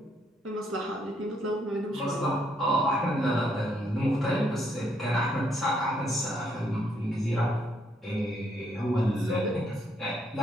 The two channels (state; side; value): normal; both; correlation 0.73